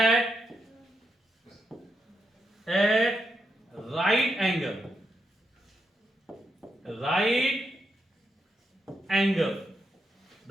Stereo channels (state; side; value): normal; both; correlation 0.83